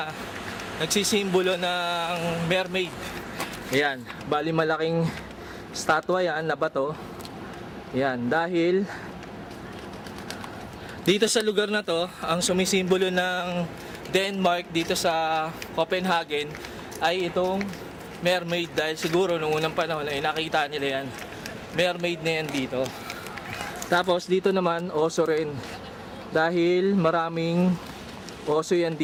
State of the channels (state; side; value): identical; both; correlation 1.00